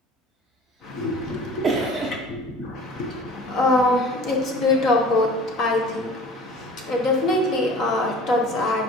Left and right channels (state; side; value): normal; both; correlation 0.44